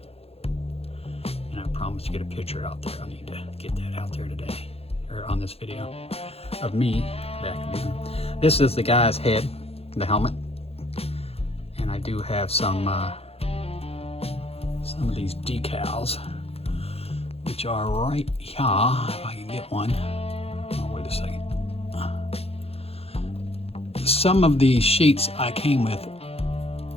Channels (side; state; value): right; late; 0.29 ms